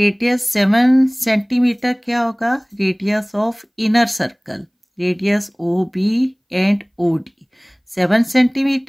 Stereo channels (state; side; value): identical; both; correlation 1.00